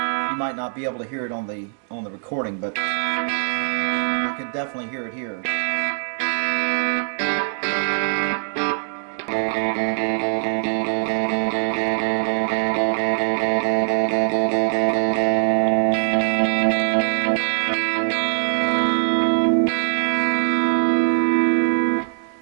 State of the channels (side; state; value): left; silent; 64 dB below the other